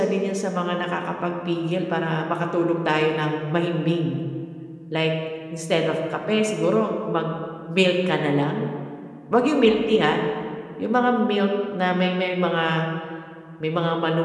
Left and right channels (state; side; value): identical; both; correlation 1.00